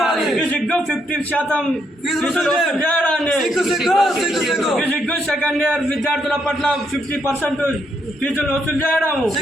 సిగ్గు 50% ఫీజులు వసూలు చేయడాన్ని సిగ్గు సిగ్గు సిగ్గు సిగ్గు. సిగ్గు సెకండ్ ఇయర్ విద్యార్థుల పట్ల 50% ఫీజులు వసూలు చేయడం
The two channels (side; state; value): both; normal; correlation 0.76